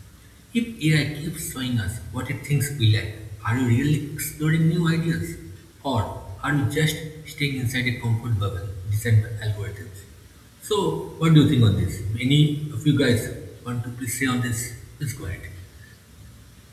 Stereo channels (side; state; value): both; identical; correlation 1.00